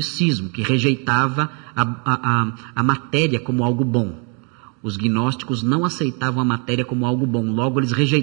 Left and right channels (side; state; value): left; quieter; 36.7 dB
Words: que rejeitava a matéria como algo bom. Os gnósticos não aceitavam a matéria como algo bom, logo eles